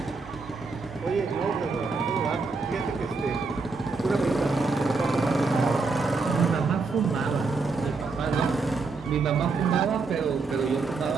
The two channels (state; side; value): quieter; left; 4.1 dB